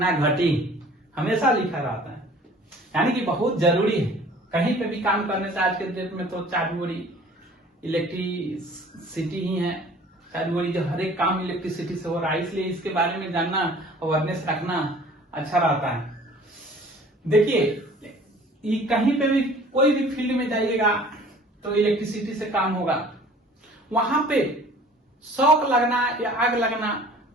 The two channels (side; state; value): both; normal; correlation 0.49